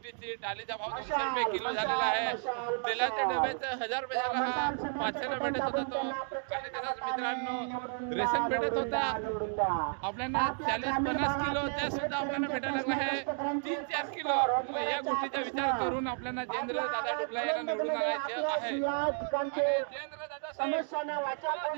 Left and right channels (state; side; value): silent; left; 56 dB below the other